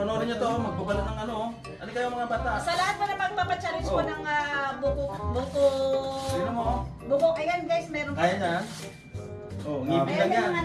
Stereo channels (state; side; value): identical; both; correlation 1.00